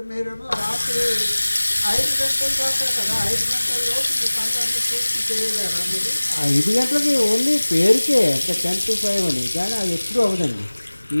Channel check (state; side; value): inverted; both; correlation -1.00